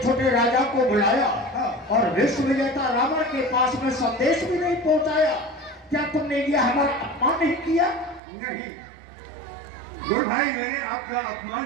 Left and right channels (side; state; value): left; drops out; at 8.2 s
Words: राजा को बुलाया और विश्व विजेता रावण के पास में संदेश भी नहीं पहुंचाया। क्या तुमने ये हमारा अपमान नहीं किया? नहीं गुरु भाई, मैंने आपका